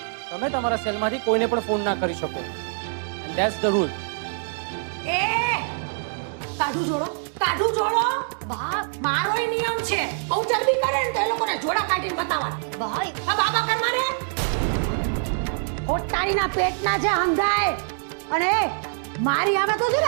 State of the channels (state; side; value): silent; left; 62 dB below the other